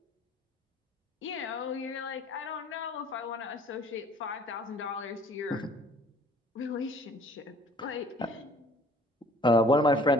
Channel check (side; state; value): both; normal; correlation 0.54